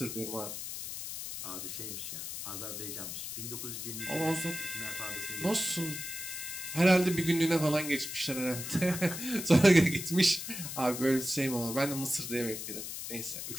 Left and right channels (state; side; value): noise; left; hiss, 7 dB below the sound